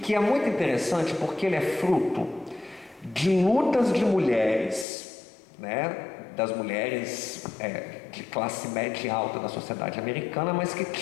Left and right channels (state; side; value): drops out; right; at 4.9 s